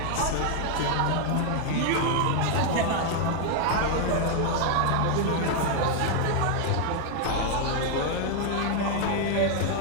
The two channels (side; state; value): both; different; correlation 0.00